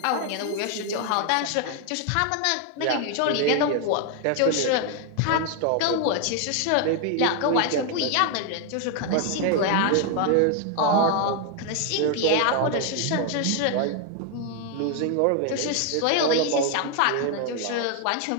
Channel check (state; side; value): different; both; correlation 0.00